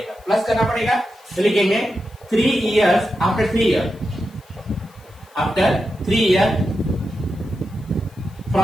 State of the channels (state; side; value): noise; left; hiss, 29 dB below the sound